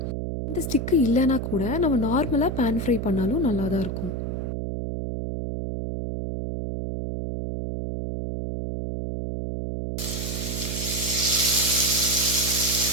இந்த ஸ்டிக்கு இல்லைன்னா கூட நம்ம நார்மலாக பேன் ஃப்ரை பண்ணாலும் நல்லா தான் இருக்கும்.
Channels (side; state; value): right; noise; hum, 3 dB below the sound